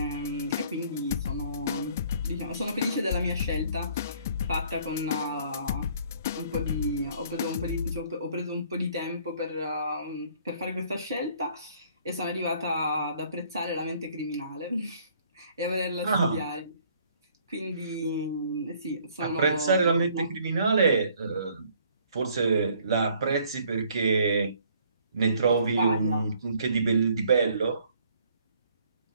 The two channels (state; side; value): inverted; both; correlation -0.60